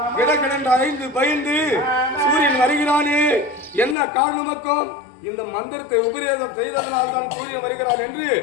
கிடக்கிடன்ற 5 பயந்து சூரியன் வருகிறானே என்ன காரணமக்கும் இந்த மந்திரத்தை உபதேசம் செய்ததனால் தான் சூரியன் வருகிறான் என்று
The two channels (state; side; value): drops out; right; at 4.0 s